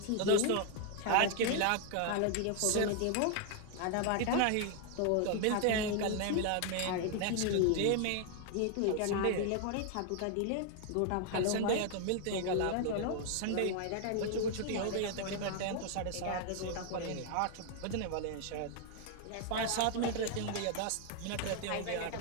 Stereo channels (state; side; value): different; both; correlation 0.00